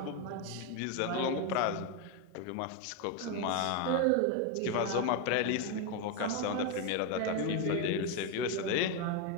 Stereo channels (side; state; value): both; different; correlation 0.02